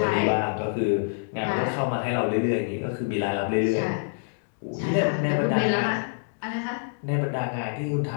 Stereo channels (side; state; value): right; silent; digital silence